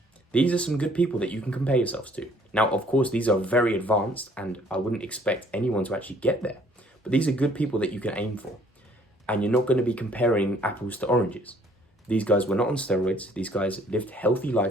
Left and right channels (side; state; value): both; normal; correlation 0.60